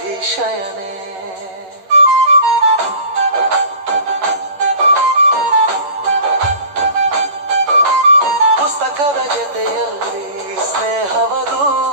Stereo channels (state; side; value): late; left; 11 ms